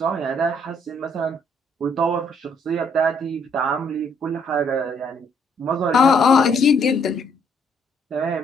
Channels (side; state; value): both; normal; correlation 0.68